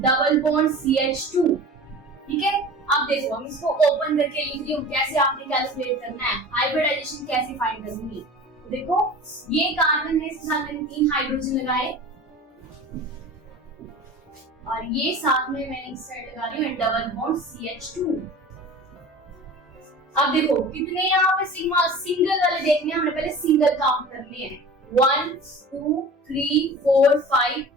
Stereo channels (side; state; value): both; normal; correlation 0.38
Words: bond CH2, ठीक है। अब देखो हम इसको ओपन करके लिख रही हूँ, कैसे आपने कैलकुलेट करना है, हाइब्रिडाइजेशन कैसे फाइंड करूंगी। तो देखो ये कार्बन है, इसके साथ मैंने 3 हाइड्रोजन लगाए, और ये साथ में मैंने इस साइड लगा रही हूँ डबल बॉन्ड CH2। अब देखो कितने यहाँ पे सिग्मा सिंगल वाले देखने हैं, हमने पहले सिंगल काउंट करने हैं, 1 2 3 4 5